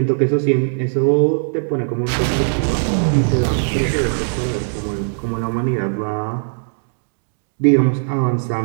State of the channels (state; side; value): silent; left; digital silence